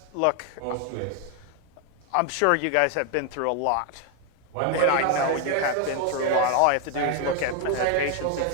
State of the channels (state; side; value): different; both; correlation 0.01